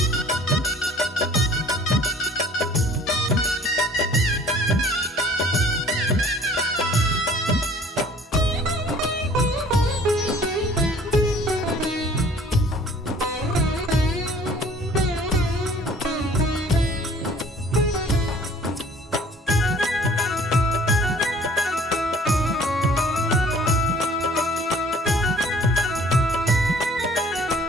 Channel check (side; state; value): both; normal; correlation 0.53